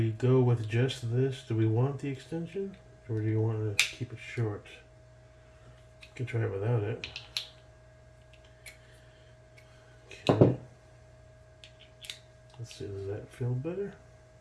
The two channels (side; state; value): both; identical; correlation 1.00